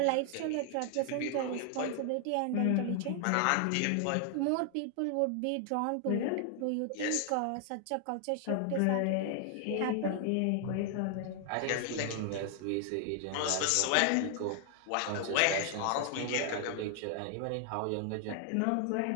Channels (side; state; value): both; different; correlation 0.00